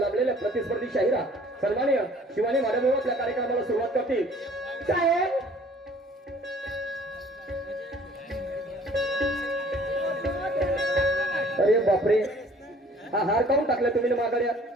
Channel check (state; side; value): normal; both; correlation 0.54